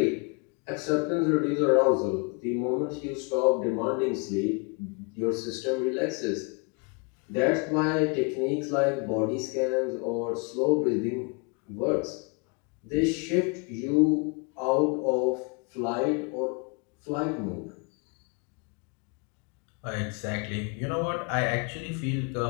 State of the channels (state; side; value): quieter; right; 32.9 dB